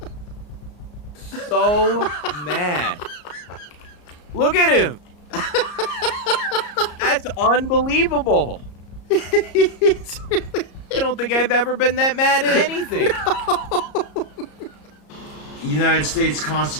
So mad. Look at him. That's unbelievable. He's really I don't think I've ever been that mad at anything. United States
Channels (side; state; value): right; late; 34 ms